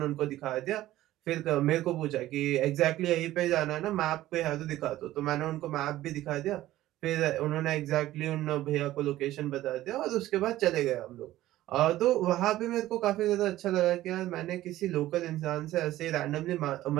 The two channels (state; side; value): quieter; left; 15.1 dB